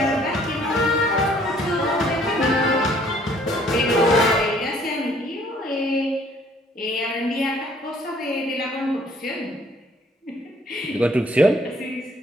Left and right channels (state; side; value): normal; both; correlation 0.60